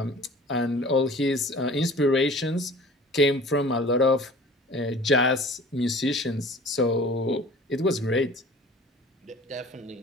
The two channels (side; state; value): both; normal; correlation 0.45